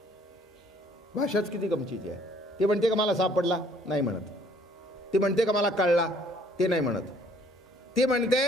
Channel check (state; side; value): normal; both; correlation 0.60